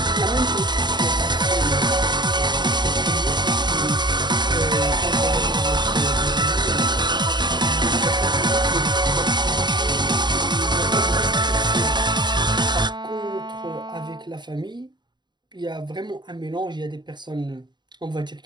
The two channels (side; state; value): left; late; 0.21 ms